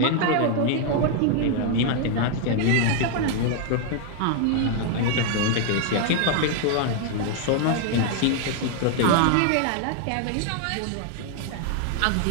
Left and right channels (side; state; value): both; different; correlation 0.00